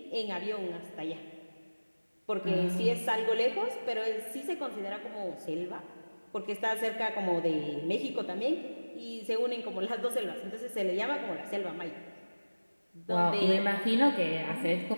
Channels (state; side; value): inverted; both; correlation -1.00